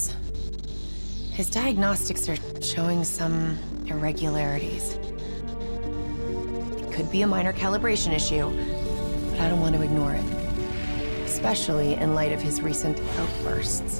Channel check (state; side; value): inverted; both; correlation -1.00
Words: His diagnostics are showing some irregularities. It could be a minor calibration issue, but I don't want to ignore it. Especially in light of his recent